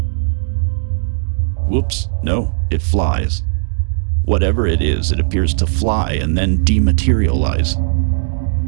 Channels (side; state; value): left; silent; digital silence